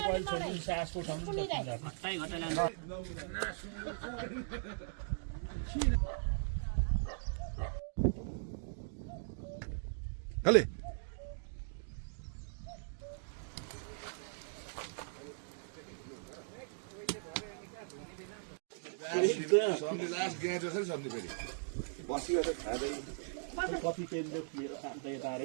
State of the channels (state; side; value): silent; left; digital silence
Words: छोड्नु सासको ठाउँ घट्टाइ घटाइ Allez. कति पेन्टले लिएर खान्छ यता